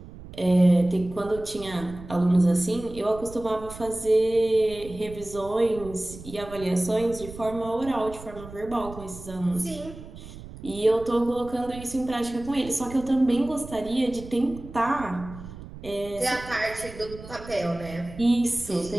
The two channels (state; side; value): noise; right; rumble, 15 dB below the sound